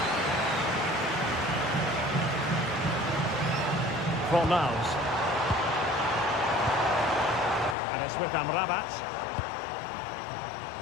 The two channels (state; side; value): drops out; right; at 7.8 s